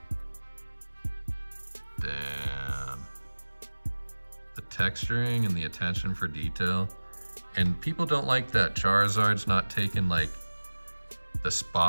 Damn. The texturing and the attention for detail. And people don't like that Charizard's not taking like the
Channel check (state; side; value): inverted; both; correlation -1.00